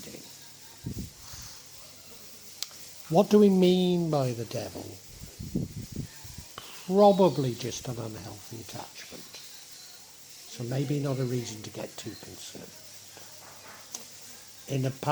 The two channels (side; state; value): both; identical; correlation 1.00